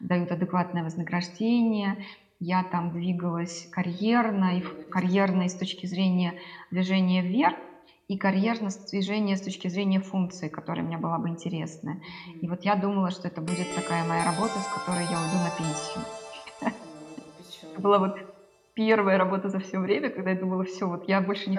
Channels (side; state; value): both; identical; correlation 1.00